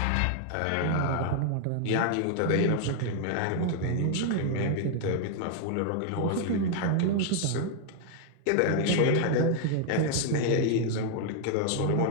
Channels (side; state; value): both; different; correlation 0.00